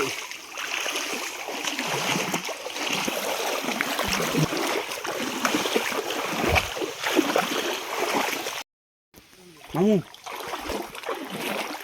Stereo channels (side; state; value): both; identical; correlation 1.00